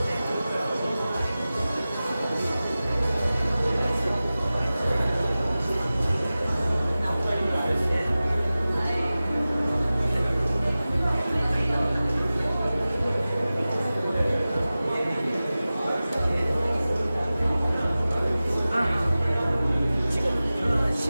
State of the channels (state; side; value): inverted; both; correlation -0.96